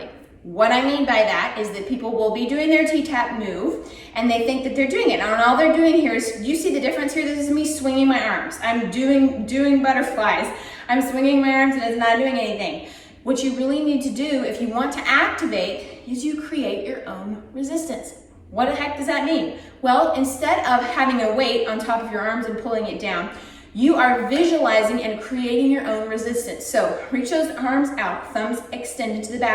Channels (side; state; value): both; identical; correlation 1.00